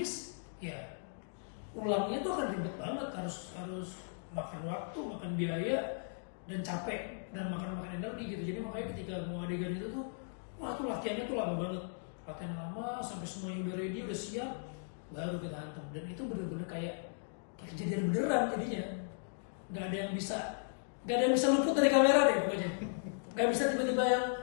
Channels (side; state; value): right; silent; digital silence